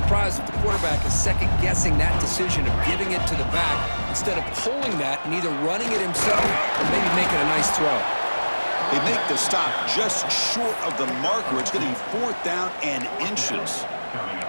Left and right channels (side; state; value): both; inverted; correlation -1.00